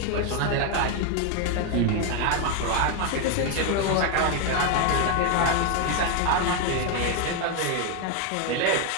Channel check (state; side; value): different; both; correlation 0.01